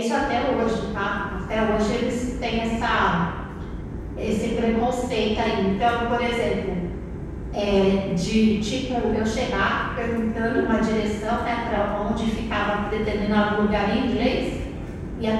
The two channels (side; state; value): both; identical; correlation 1.00